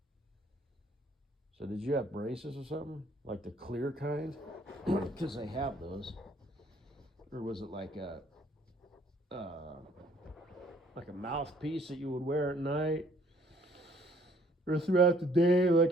So did you have braces or something? Like the clear kind? Because they have those. Or was it like a mouthpiece that you would wear at night? Or throughout the day like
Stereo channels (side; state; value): both; normal; correlation 0.61